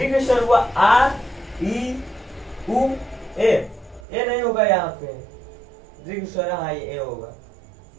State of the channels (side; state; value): left; drops out; at 4.0 s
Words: स्वर हुआ आ ई उ ए नहीं होगा यहाँ पे दीर्घ स्वर, हाँ ये ए होगा,